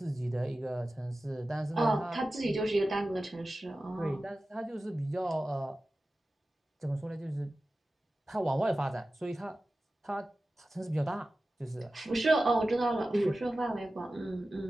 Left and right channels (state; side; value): normal; both; correlation 0.95